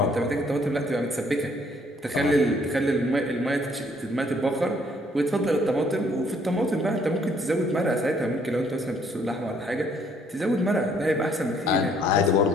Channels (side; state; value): both; normal; correlation 0.65